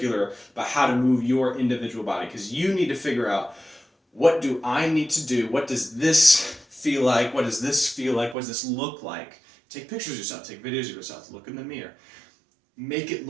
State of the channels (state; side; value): drops out; left; at 8.3 s